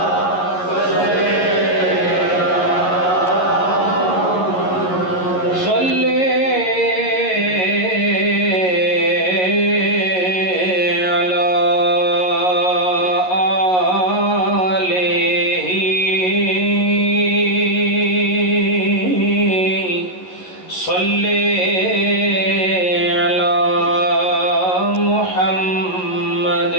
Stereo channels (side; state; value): right; late; 11 ms